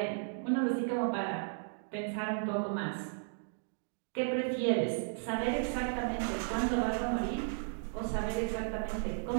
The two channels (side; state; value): left; silent; digital silence